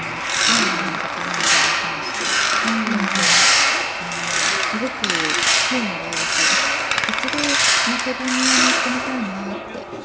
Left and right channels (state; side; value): identical; both; correlation 1.00